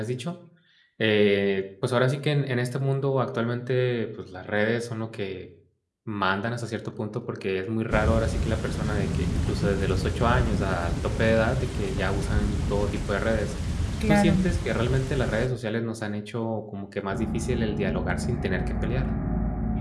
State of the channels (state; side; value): identical; both; correlation 1.00